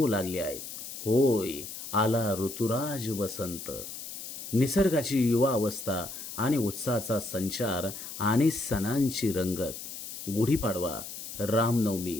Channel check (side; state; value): left; noise; hiss, 9 dB below the sound